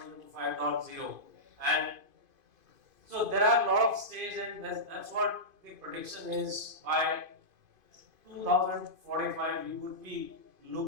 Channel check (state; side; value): late; left; 2.5 ms